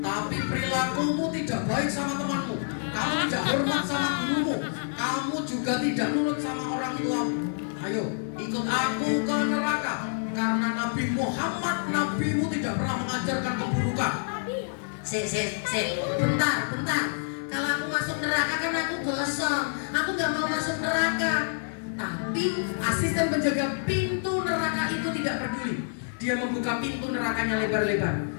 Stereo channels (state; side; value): silent; right; 60 dB below the other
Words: tapi perilakumu tidak baik sama temanmu. Kamu tidak hormat sama gurumu, kamu juga tidak nurut sama orang tuamu. Ayo ikut aku ke neraka, karena Nabi Muhammad, nabimu tidak pernah mengajarkan keburukan. Bentar. Kalau aku masuk neraka kan aku gosong. Aku gak mau masuk neraka. Tapi asisten penjaga pintu neraka itu tidak peduli. Dia membuka pintu nerakanya lebar-lebar.